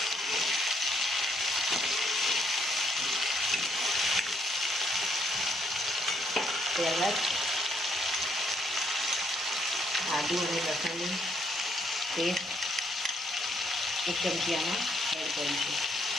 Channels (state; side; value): normal; both; correlation 0.72